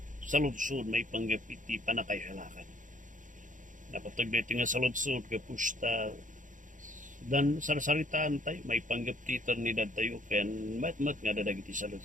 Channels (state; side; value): late; left; 0.37 ms